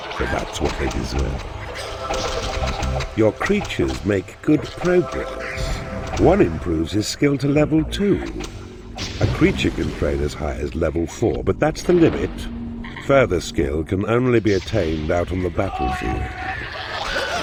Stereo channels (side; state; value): both; identical; correlation 1.00